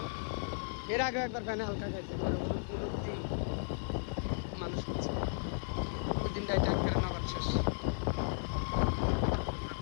এর আগে একবার ফ্যানে হালকা খাইছে মানুষ হচ্ছে ওই দিন গাড়িটা নগদ শেষ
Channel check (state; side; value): silent; right; digital silence